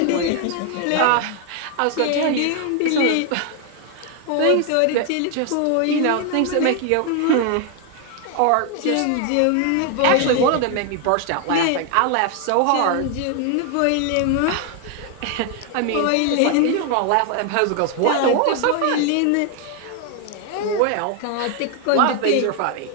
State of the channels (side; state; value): both; different; correlation 0.00